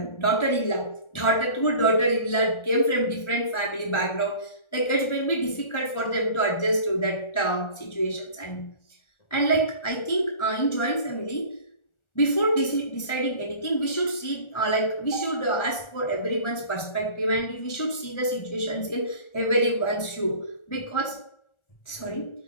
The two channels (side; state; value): right; late; 1.4 ms